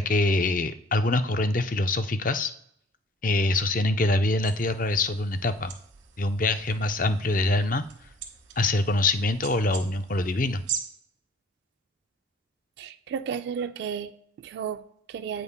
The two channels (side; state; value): both; normal; correlation 0.52